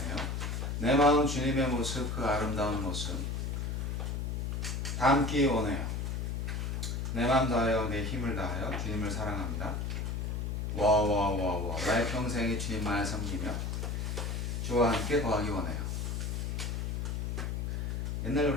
내 마음 주님의 모습, 그 아름다운 모습 담기 원해요. 내 마음 다하여 내 힘을 다하여 주님을 사랑합니다. 와와와와 나의 평생에 주님만을 섬기며 주와 함께 거하기 원해요. 옛날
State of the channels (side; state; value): left; noise; hum, 2 dB below the sound